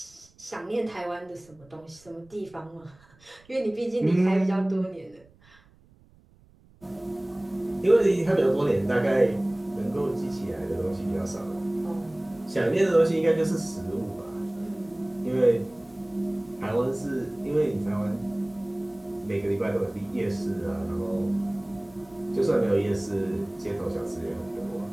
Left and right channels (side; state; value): right; noise; rumble, 29 dB below the sound